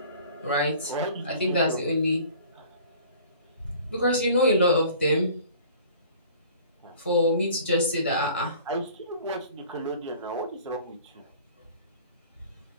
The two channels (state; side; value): inverted; both; correlation -0.48